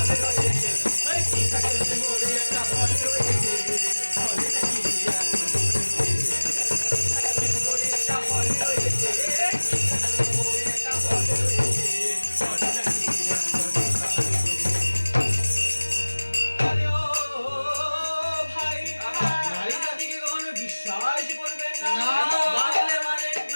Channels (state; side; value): inverted; both; correlation -1.00